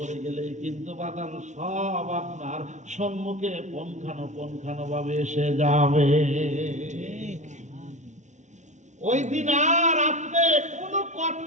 গেলেই কিন্তু বাজার সব আপনার সম্মুখে পঙ্খানো ভাবে এসে যাবে। ওই দিন আর আপনি কোনো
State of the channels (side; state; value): left; late; 0.35 ms